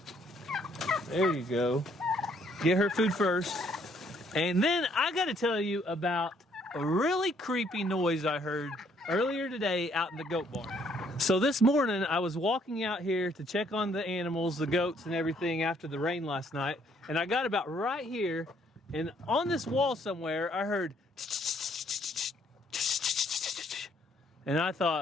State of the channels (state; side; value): normal; both; correlation 0.66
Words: There you go. Get her food first. And then I got to tell you about a really creepy noise I heard earlier today out in the goat barn. So this morning I was walking out here to check on the animals, the goats and everything after the rain last night. And I got about right here, and on this wall somewhere I heard, and I